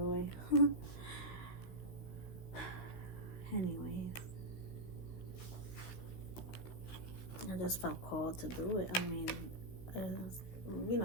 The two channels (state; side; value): late; right; 16 ms